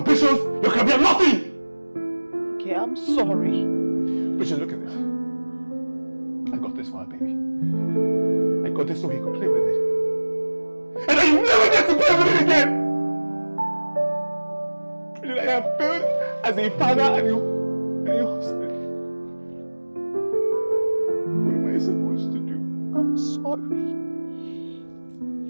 your career, nothing. Okay, I'm sorry. Bridget, look at this. I got this for our baby. I got this so he could play with it. And I never get to play with it again! Bridget, I have failed as a father and a husband. What am I supposed to do? I'm sorry.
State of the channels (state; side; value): inverted; both; correlation -1.00